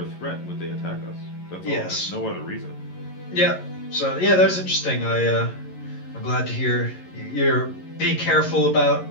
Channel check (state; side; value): late; right; 11 ms